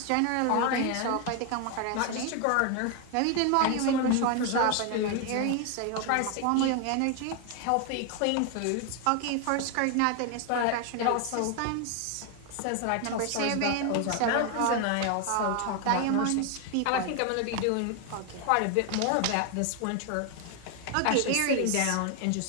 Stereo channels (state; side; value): different; both; correlation 0.01